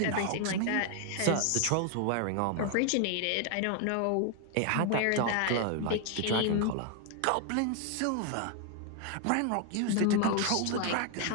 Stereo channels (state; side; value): different; both; correlation 0.00